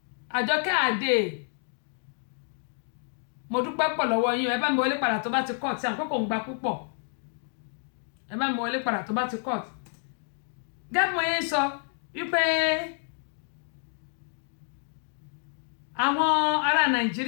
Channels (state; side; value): silent; right; 59 dB below the other